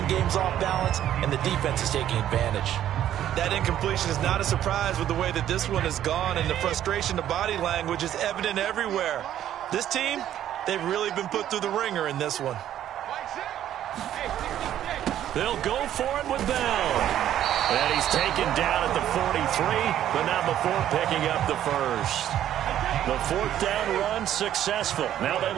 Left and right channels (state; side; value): quieter; left; 11.4 dB